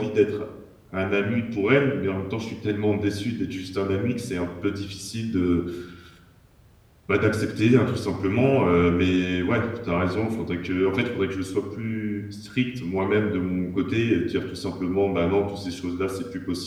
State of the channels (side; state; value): both; identical; correlation 1.00